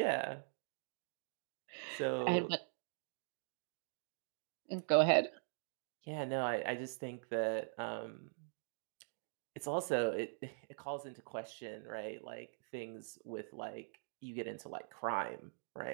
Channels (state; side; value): silent; left; digital silence